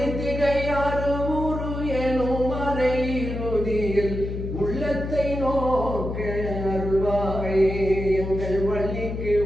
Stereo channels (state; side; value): noise; left; hum, 5 dB below the sound